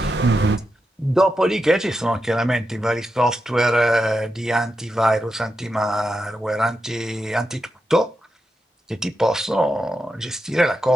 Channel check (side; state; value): both; normal; correlation 0.87